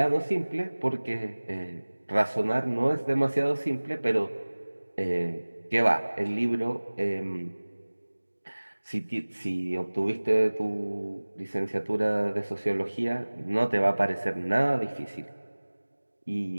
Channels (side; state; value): both; inverted; correlation -1.00